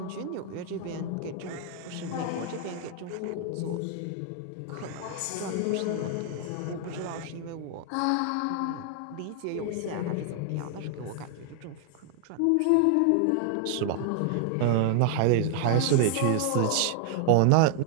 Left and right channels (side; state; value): both; different; correlation 0.00